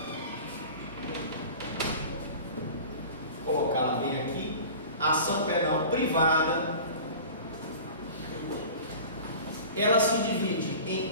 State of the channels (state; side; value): inverted; both; correlation -0.39